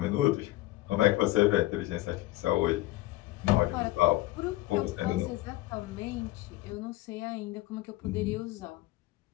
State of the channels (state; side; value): quieter; right; 18.0 dB